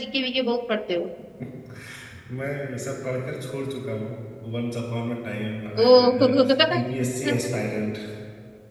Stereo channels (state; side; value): identical; both; correlation 1.00